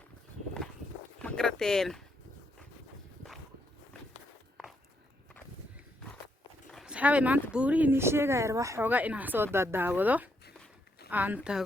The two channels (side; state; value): both; normal; correlation 0.77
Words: ma garateen asxaabay maanta buurihii nii sheegaya wax xoogaa inaan soo daawado aan